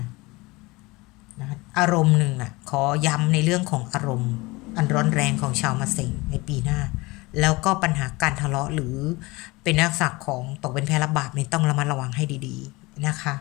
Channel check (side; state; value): right; quieter; 23.1 dB